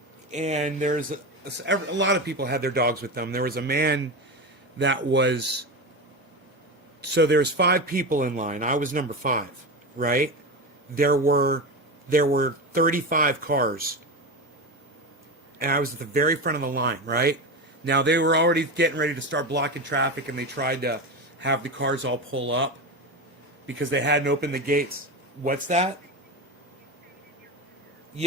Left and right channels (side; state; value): both; normal; correlation 0.20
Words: and there's a lot of people had their dogs with them. There was a man that was, so there's 5 people in line. I was number 5, right? There were 35 cars, and I was at the very front of the line, right? Now, they were already getting ready to start blocking traffic, and they tried to have the cars all pull up because they hadn't opened the gates. What's that?